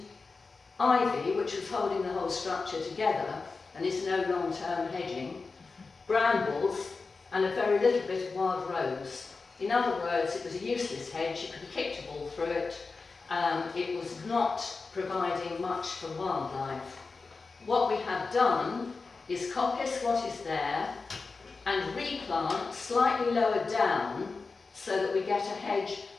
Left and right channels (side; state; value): right; quieter; 4.2 dB